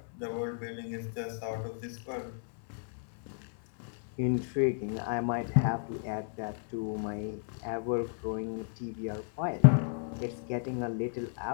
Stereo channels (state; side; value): silent; right; 56 dB below the other